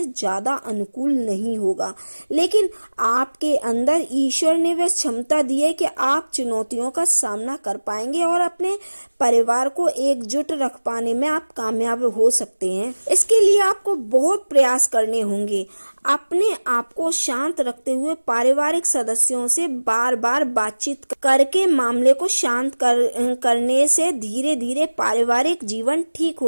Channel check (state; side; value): inverted; both; correlation -1.00